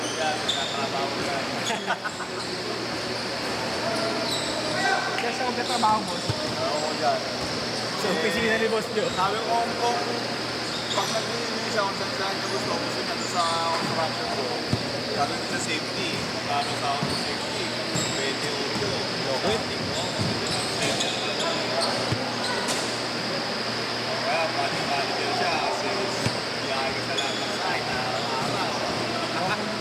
yan. Nakatrabaho yan. Kaya siya magkatrabaho, boss. Oo dyan. Sa opisina ni Boss Joe. Sabi ko kung pag nag-iinis siya kung saan ka gusto ko gusto niya sa construction ko. Sabi ko sa safety. Magkano sa ako sa safety? 28. Okay. Kaya pati-pati din siya kasi biyahe ka sa lahat ng site na araw. Ano,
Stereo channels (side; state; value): both; identical; correlation 1.00